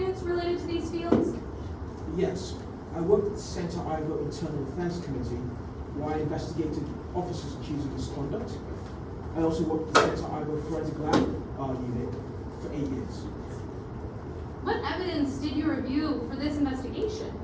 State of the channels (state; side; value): identical; both; correlation 1.00